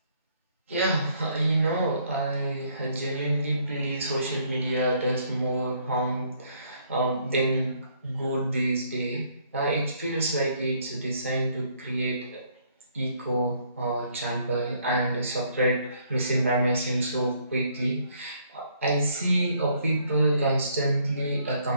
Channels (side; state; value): both; inverted; correlation -0.67